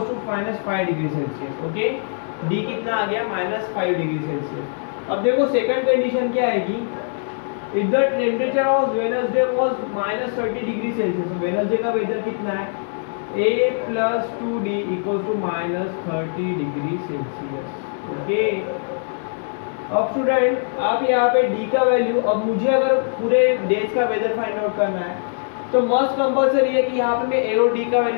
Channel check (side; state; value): right; silent; digital silence